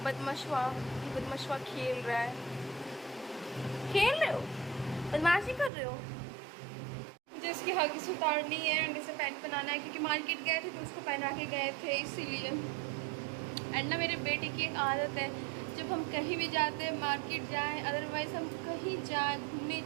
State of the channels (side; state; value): left; drops out; at 5.7 s